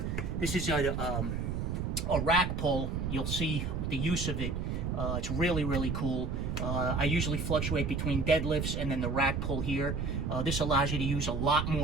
this is a rack pull. You'll see the use of it. It's really cool. I usually fluctuate between deadlifts and then the rack pull here. This allows you to use a lot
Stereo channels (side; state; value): right; noise; rumble, 2 dB below the sound